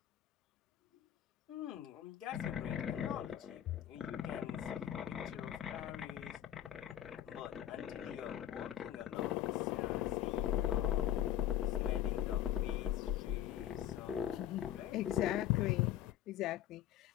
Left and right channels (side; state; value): right; quieter; 11.4 dB